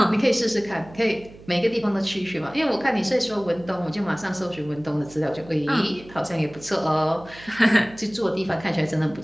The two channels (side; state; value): right; noise; hum, 20 dB below the sound